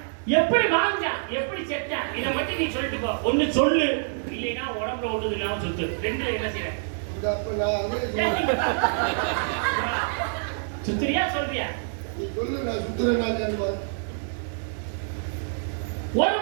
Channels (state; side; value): silent; left; digital silence